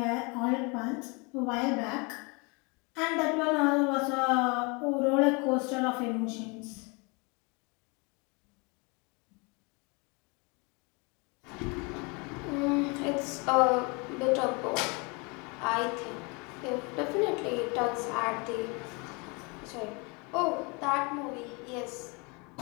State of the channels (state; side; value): quieter; right; 29.9 dB